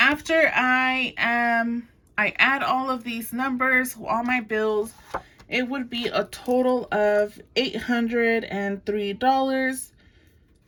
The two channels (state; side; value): identical; both; correlation 1.00